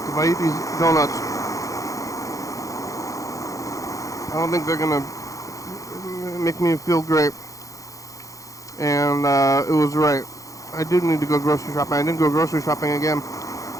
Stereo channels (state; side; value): late; right; 0.16 ms